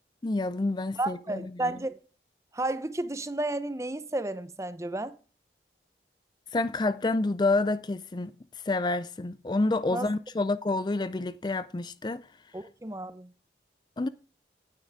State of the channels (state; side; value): normal; both; correlation 0.65